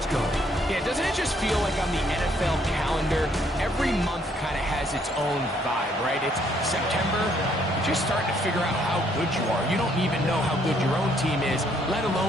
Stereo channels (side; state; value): both; normal; correlation 0.68